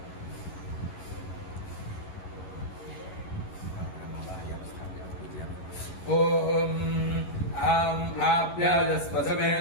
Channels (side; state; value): right; late; 11 ms